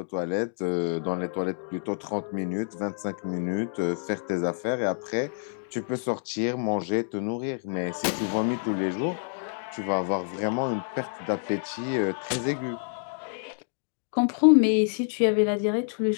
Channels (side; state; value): right; silent; digital silence